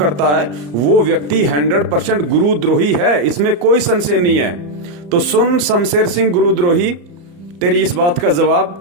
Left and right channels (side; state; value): left; late; 34 ms